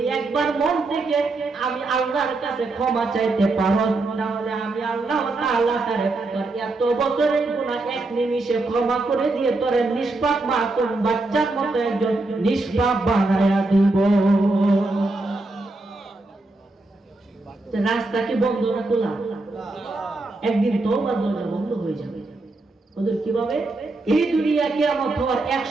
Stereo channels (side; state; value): left; quieter; 3.1 dB